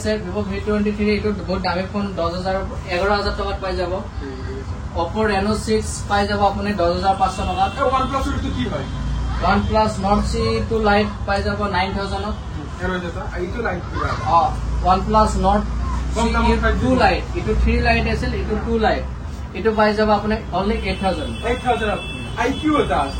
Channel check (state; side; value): identical; both; correlation 1.00